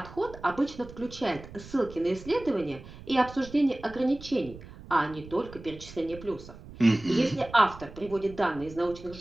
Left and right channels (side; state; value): right; noise; rumble, 16 dB below the sound